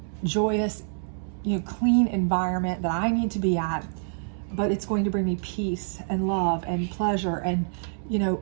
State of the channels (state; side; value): silent; left; 60 dB below the other